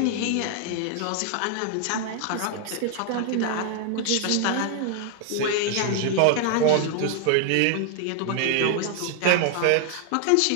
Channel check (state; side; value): different; both; correlation 0.00